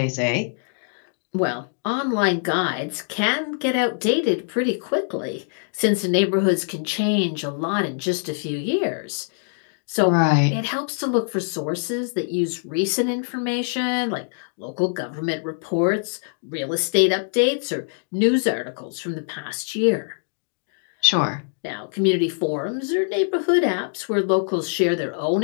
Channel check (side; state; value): right; silent; digital silence